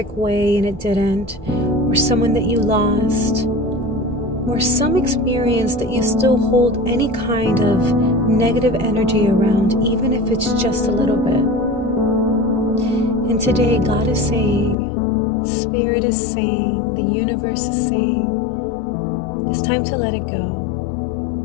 way and it didn't, or someone that you lost, or some experience that you still hold any kind of negative energy around, even if it's just a little bit. And today God is saying, Spirit is saying, the universe is saying, it's time to let it go.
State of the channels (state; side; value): drops out; right; at 14.8 s